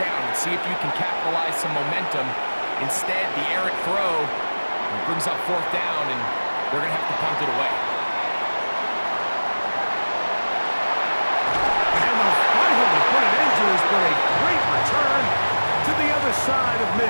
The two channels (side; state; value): both; inverted; correlation -1.00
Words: and see if you can capitalize some momentum. Instead, the errant throw brings up 4th down, and they're going to have to punt it away. And they'll finally put an end to this, but a great return to the other side of